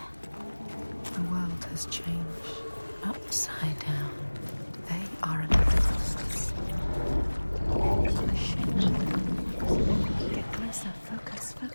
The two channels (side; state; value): both; inverted; correlation -1.00